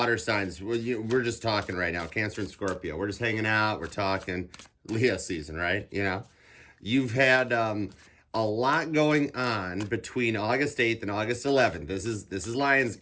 signs, we're just talking right now, Cancer and Scorpio. We're just hanging out, we're talking Leo season, right? You know, you've had a lot going on between August 8th and August 11th. This is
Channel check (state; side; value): identical; both; correlation 1.00